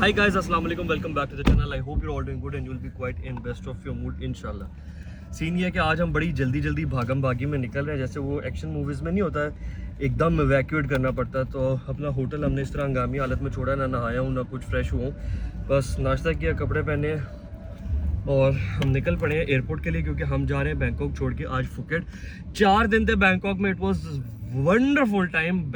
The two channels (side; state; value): both; identical; correlation 1.00